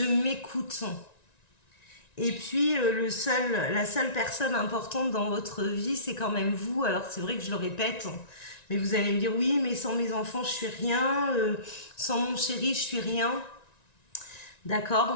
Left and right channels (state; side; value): late; right; 1.9 ms